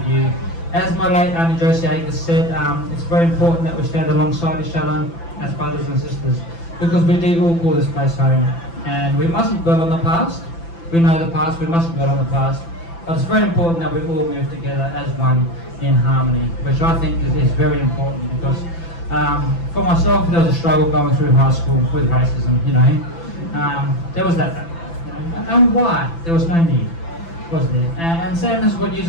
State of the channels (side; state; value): right; late; 5.9 ms